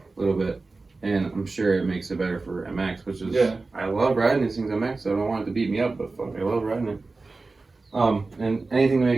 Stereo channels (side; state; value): left; quieter; 3.7 dB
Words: A little bit. And I'm sure it makes it better for MX, which is, Yeah. I love riding these things MX, so I don't want it to beat me up, but fuck, I love riding it. And anything to